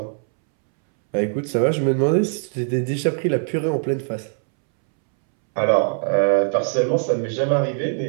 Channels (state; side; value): silent; left; 65 dB below the other